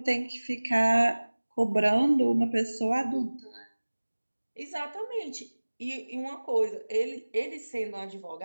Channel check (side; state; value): both; inverted; correlation -1.00